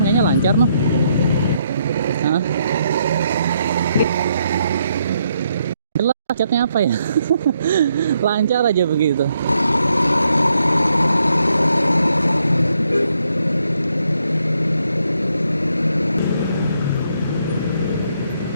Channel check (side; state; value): both; inverted; correlation -0.75